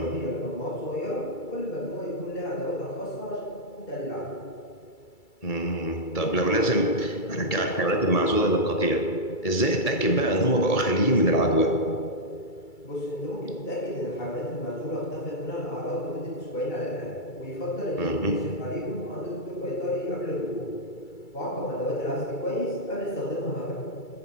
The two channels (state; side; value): late; right; 2.3 ms